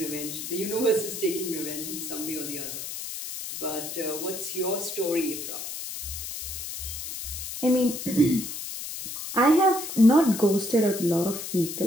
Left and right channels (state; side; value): noise; left; hiss, 7 dB below the sound